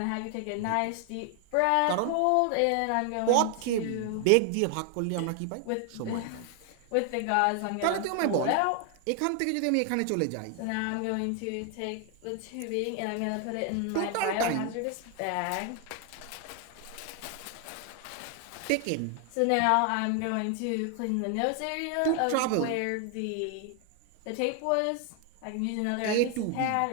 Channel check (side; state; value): both; different; correlation 0.00